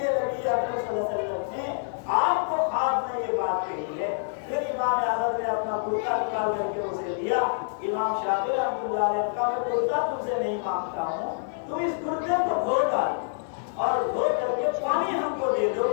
نبی اکرم صلی اللہ علیہ وسلم نے آپ کو خواب میں یہ بات کہی ہے. پھر امام احمد نے اپنا کرتا نکال کر کے اسے دیا. امام شافعی رحمۃ اللہ علیہ کا میں کرتا تم سے نہیں مانگتا ہوں، تم اس کرتے کو دھو ڈال اور دھو کر کے پانی ہم کو دے دو.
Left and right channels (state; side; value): silent; right; digital silence